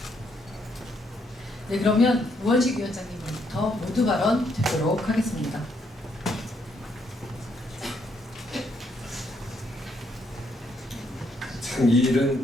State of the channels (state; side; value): normal; both; correlation 0.74